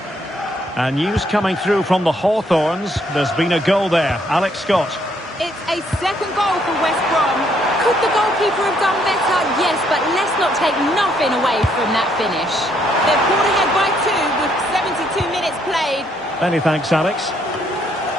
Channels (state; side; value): normal; both; correlation 0.70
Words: And news coming through from the Hawthorns. There's been a goal there. Alex Scott. It's a second goal for West Brom. Could the goalkeeper have done better? Yes, but let's not take nothing away from that finish. They're pulled ahead by 2 with 72 minutes played. Many thanks, Alex.